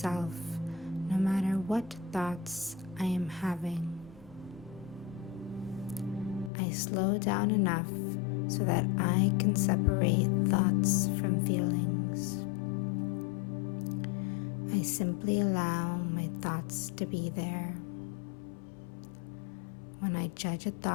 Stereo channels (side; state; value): right; drops out; at 6.5 s